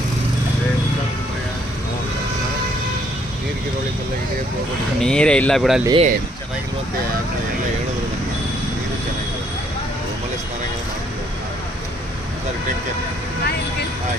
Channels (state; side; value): normal; both; correlation 0.67